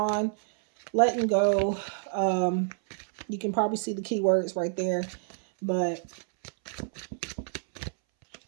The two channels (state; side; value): silent; left; 59 dB below the other